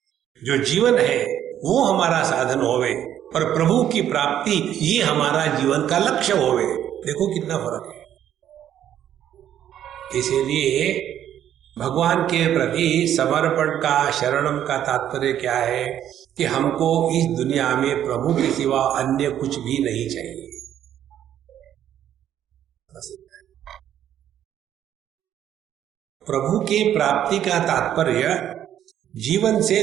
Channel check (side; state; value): left; quieter; 10.7 dB